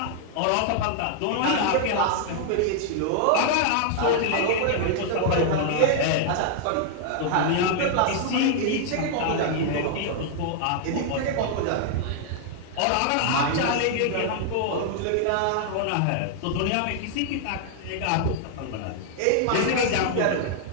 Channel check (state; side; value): different; both; correlation -0.01